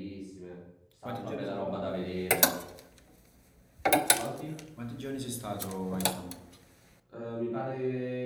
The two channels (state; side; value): identical; both; correlation 1.00